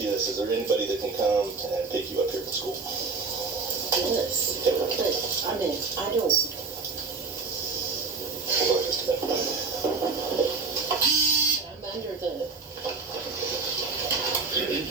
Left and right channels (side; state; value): left; quieter; 4.5 dB